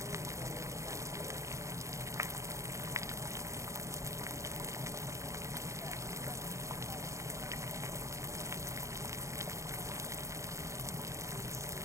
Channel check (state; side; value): late; left; 0.15 ms